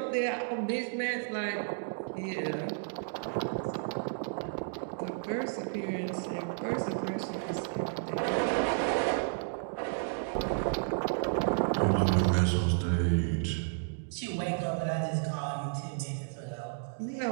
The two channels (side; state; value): left; silent; digital silence